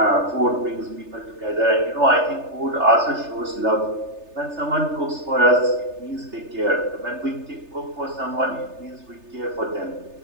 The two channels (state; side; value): late; left; 3.3 ms